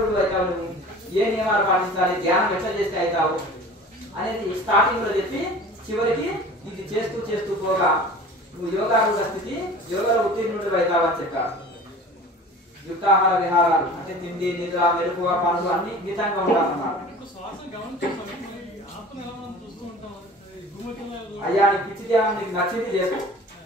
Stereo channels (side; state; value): both; normal; correlation 0.41